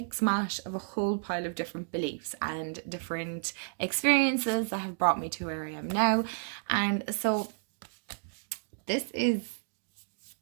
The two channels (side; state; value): left; silent; digital silence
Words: mash of a whole pile of different beliefs and different experiences that have brought me to where I am now. And so this is